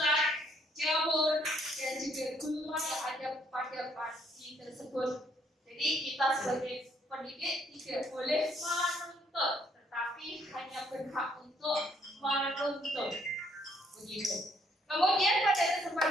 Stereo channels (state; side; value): normal; both; correlation 0.67